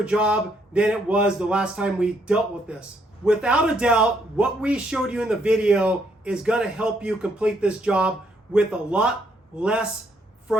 job than it was the last time we dealt with this. Without a doubt, what we showed you in the video is gonna help you complete this job with a lot less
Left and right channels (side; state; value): both; normal; correlation 0.72